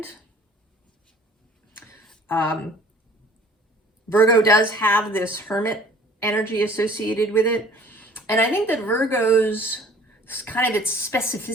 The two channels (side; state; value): both; normal; correlation 0.51